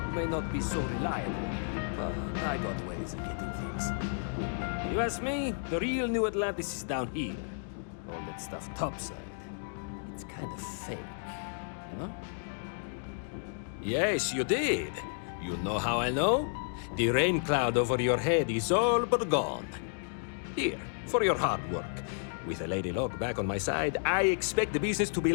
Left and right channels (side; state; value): right; silent; digital silence